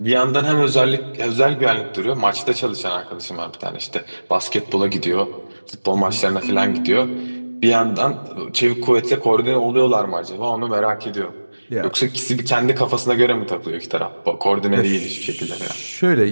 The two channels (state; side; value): inverted; both; correlation -1.00